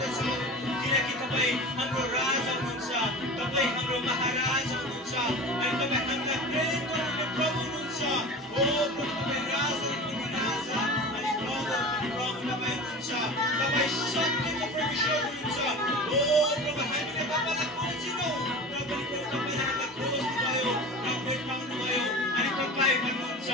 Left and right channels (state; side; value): normal; both; correlation 0.34